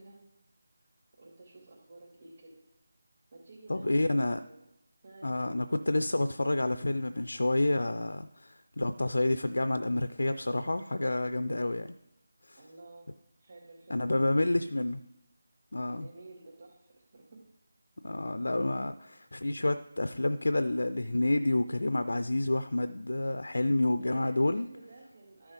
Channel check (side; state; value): both; inverted; correlation -0.99